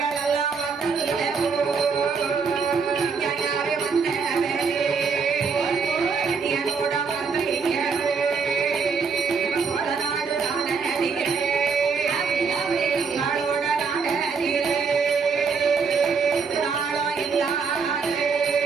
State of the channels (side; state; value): left; quieter; 5.4 dB